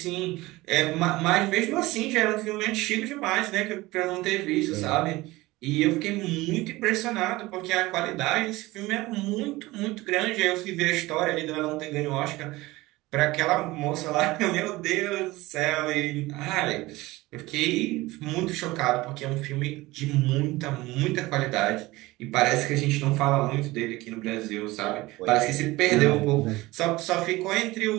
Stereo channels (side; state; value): left; quieter; 19.8 dB